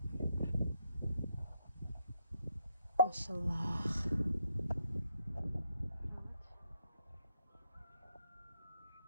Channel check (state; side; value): inverted; both; correlation -0.77